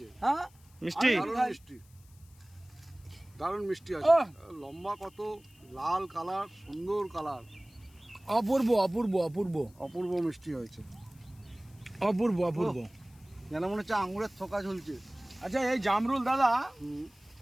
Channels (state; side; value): noise; left; hiss, 29 dB below the sound